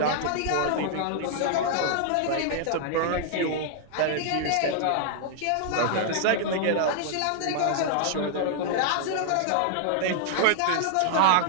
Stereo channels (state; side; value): different; both; correlation -0.01